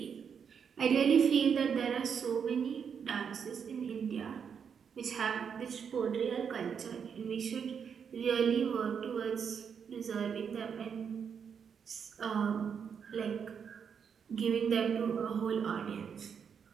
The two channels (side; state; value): left; quieter; 7.0 dB